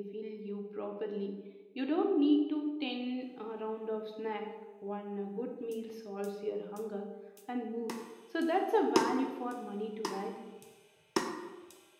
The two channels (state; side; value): identical; both; correlation 1.00